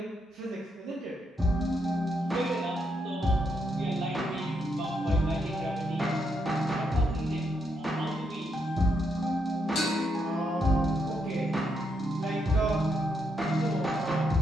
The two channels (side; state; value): both; normal; correlation 0.79